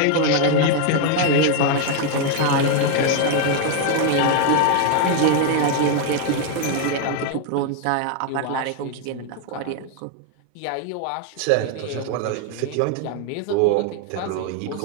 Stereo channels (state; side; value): different; both; correlation 0.00